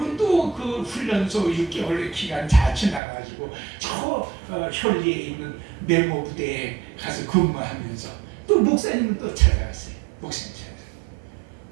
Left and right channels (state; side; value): drops out; left; at 3.0 s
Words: 또 그 훈련소 6개월의 기간 다 지나가지고 저 현리에 있는 메모 부대에 가서 근무하면서 또 목사님을 또 찾아갔어요. 목사님 찾아갔어요.